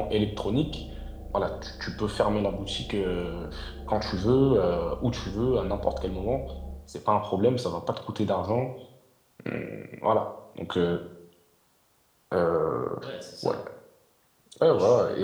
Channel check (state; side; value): identical; both; correlation 1.00